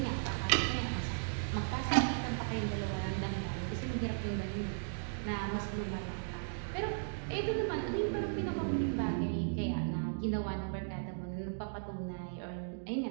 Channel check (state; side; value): silent; left; digital silence